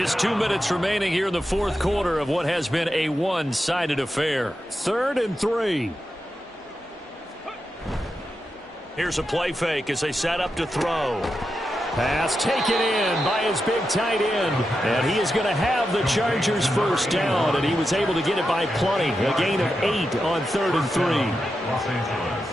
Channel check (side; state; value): both; normal; correlation 0.88